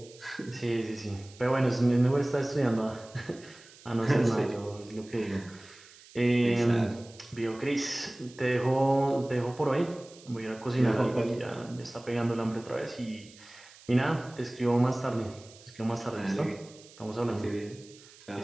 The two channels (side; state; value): right; noise; hiss, 22 dB below the sound